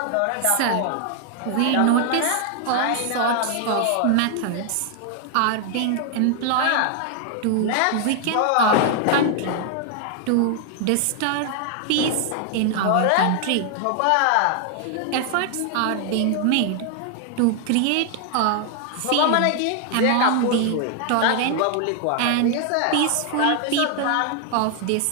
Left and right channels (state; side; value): different; both; correlation 0.00